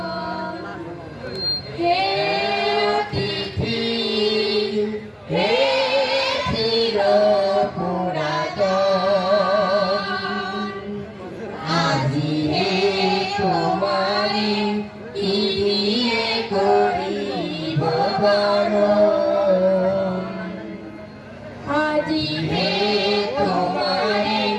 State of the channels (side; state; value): both; identical; correlation 1.00